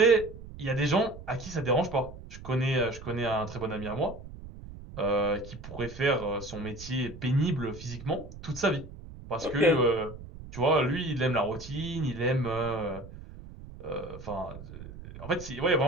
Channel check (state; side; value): noise; right; rumble, 14 dB below the sound